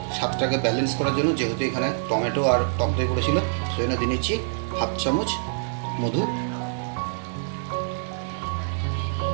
স্বাদটাকে ব্যালেন্স করার জন্য, যেহেতু এখানে টমেটো আর টক দই পড়েছিল, সেই জন্য দিয়ে নিচ্ছি 1/2 চামচ মধু।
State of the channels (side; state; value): left; silent; digital silence